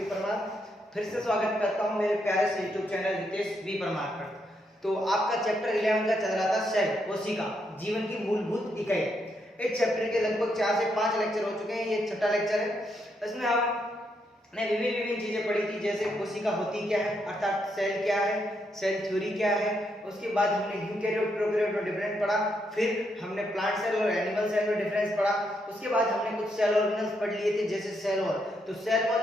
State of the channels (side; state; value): both; normal; correlation 0.78